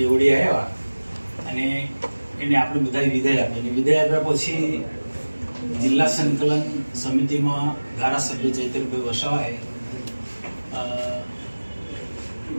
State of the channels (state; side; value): inverted; both; correlation -1.00